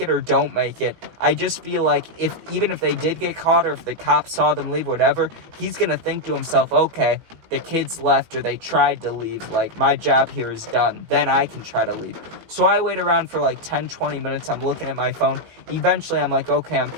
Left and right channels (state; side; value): late; left; 18 ms